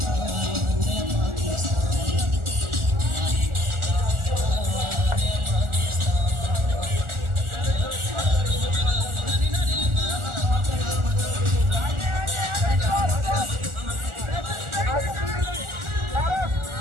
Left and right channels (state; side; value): late; left; 1.4 ms